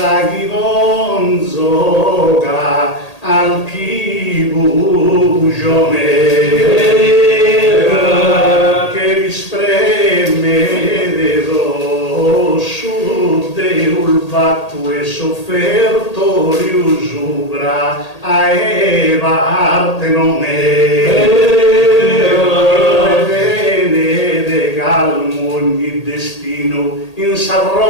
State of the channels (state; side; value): late; right; 1.8 ms